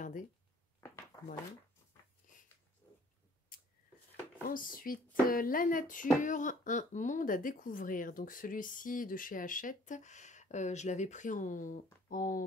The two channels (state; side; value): normal; both; correlation 0.56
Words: Voilà. Ensuite, La nature, un monde à découvrir. Donc celui-ci de chez Hachette, je l'avais pris